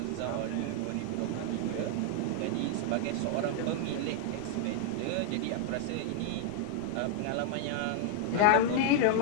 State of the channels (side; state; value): both; different; correlation 0.00